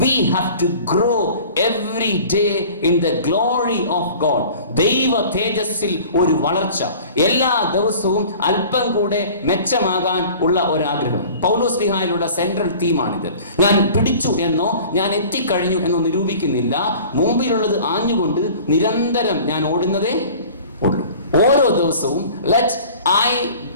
We have to grow every day in the glory of God. ദൈവ തേജസ്സിൽ ഒരു വളർച്ച, എല്ലാ ദിവസവും അല്പം കൂടെ മെച്ചമാകാൻ ഉള്ള ഒരാഗ്രഹം. പൗലോസ്ലീഹായിലുള്ള സെൻട്രൽ തീമാണിത്. ഞാൻ പിടിച്ചു എന്നോ ഞാൻ എത്തിക്കഴിഞ്ഞു എന്നോ നിരൂപിക്കുന്നില്ല. മുമ്പിലുള്ളത് ആഞ്ഞുകൊണ്ട് നിരന്തരം ഞാൻ ഓടുന്നതേ ഉള്ളൂ. ഓരോ ദിവസവും let I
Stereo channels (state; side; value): inverted; both; correlation -0.44